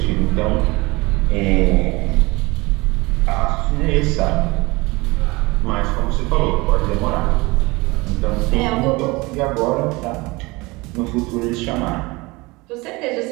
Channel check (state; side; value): quieter; left; 23.7 dB